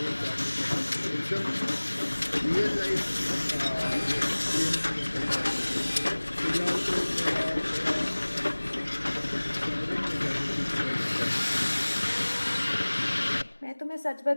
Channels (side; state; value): both; inverted; correlation -1.00